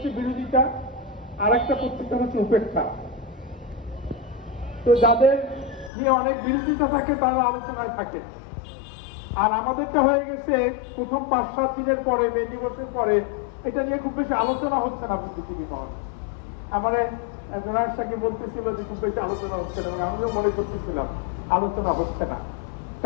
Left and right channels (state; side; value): drops out; right; at 5.9 s